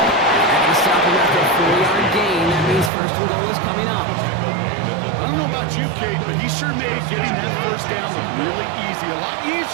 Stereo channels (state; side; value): drops out; left; at 2.9 s